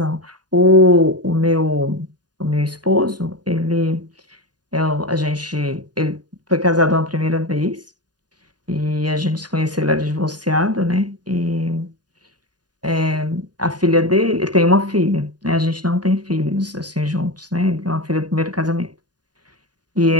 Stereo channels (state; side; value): late; left; 0.69 ms